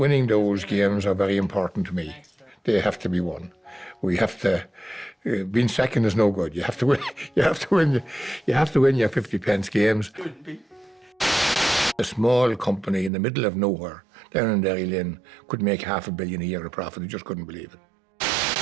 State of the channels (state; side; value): drops out; left; at 13.1 s